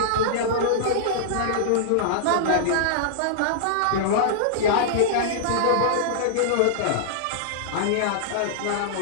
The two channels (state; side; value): different; both; correlation -0.02